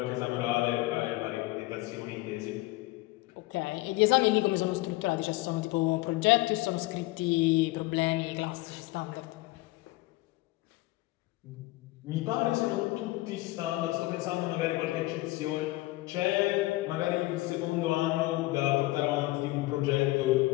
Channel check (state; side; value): quieter; right; 19.6 dB